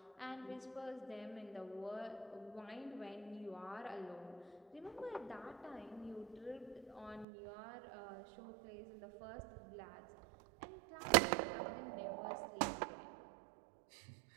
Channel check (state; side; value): drops out; left; at 7.2 s